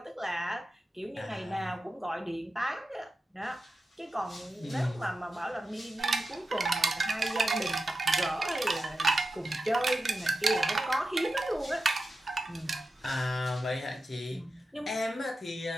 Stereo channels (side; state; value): both; normal; correlation 0.92